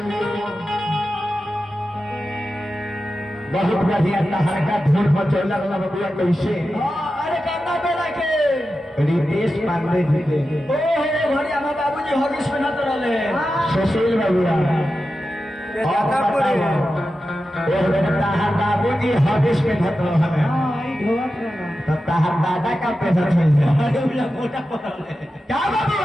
बहुत बढ़िया तहर का धूल मचौला वाला बबुआ कैसे अरे करना बेला के रितेश पांडे जी के ओहो भरी हमार बाबूजी हॉगिस में नत रहले सुशील बबुआ तहर बाबूजी हॉगिस में धत रहले तो तहर दादा का पैसा मिल जाए मोटा पड़ले क्या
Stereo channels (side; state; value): both; normal; correlation 0.91